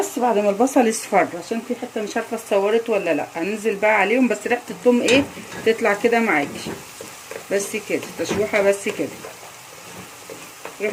بعد ما البصل يصفر. عشان في حته مش عارفه اتصورت ولا لا. هننزل بقى عليهم بس ريحه الثوم ايه تطلع كده معاكي بس كده تشويحه بس كده.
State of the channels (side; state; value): both; identical; correlation 1.00